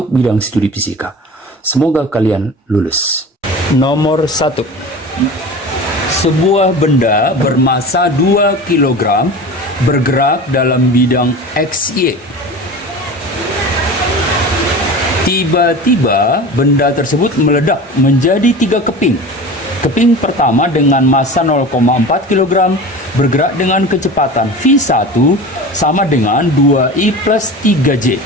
bidang studi fisika. Semoga kalian lulus. Nomor 1. Sebuah benda bermassa 2 kg bergerak dalam bidang XY. Tiba-tiba benda tersebut meledak menjadi 3 keping. Keping pertama dengan massa 0,4 kg bergerak dengan kecepatan V1 sama dengan 2I plus 3J.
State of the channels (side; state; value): both; normal; correlation 0.34